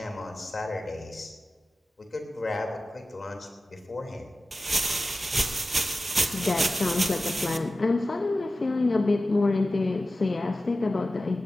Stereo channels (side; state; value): both; normal; correlation 0.94